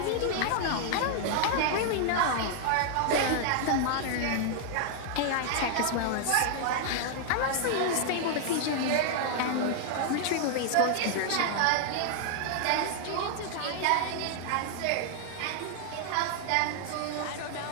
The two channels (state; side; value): different; both; correlation 0.00